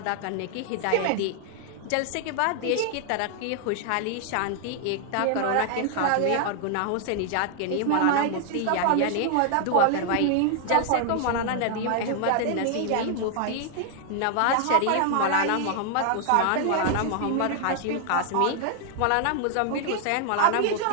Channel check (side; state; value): both; different; correlation 0.00